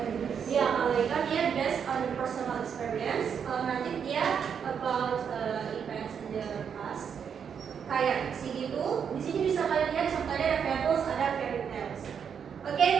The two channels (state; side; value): quieter; left; 7.3 dB